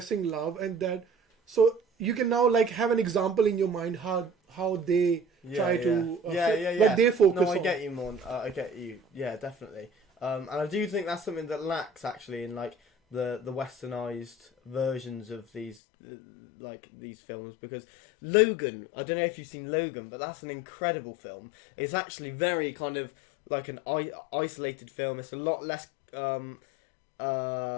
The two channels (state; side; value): drops out; right; at 15.8 s